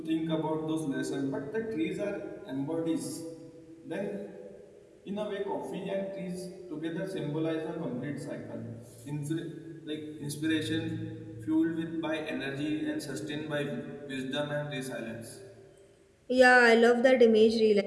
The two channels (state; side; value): identical; both; correlation 1.00